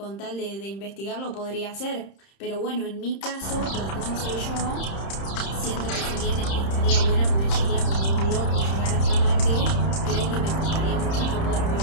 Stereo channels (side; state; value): right; late; 31 ms